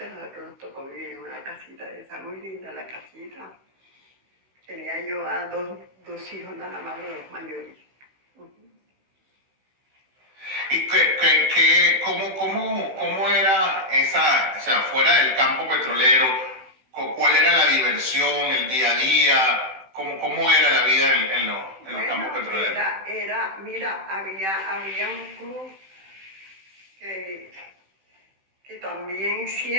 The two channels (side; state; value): left; late; 16 ms